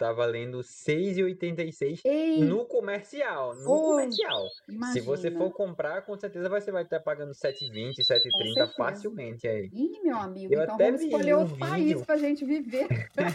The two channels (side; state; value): both; identical; correlation 1.00